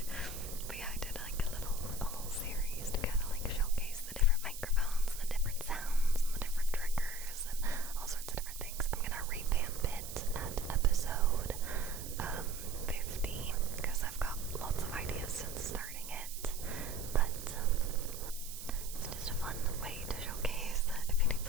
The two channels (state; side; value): noise; right; hiss, 10 dB below the sound